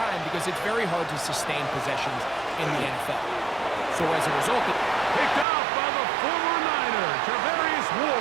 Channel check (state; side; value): drops out; left; at 5.5 s